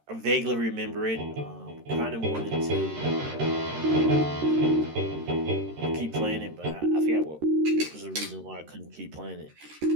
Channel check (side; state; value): left; late; 13 ms